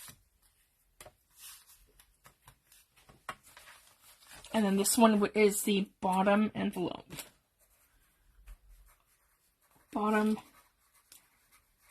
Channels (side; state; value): both; identical; correlation 1.00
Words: And then this one is the bottom envelope. Bottom